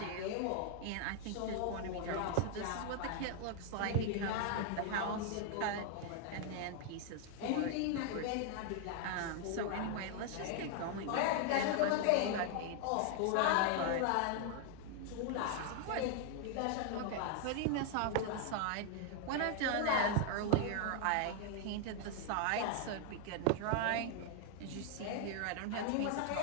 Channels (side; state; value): both; different; correlation 0.00